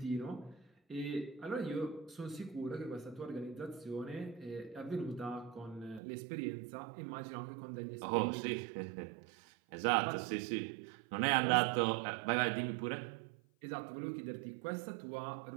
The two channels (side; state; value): left; drops out; at 6.0 s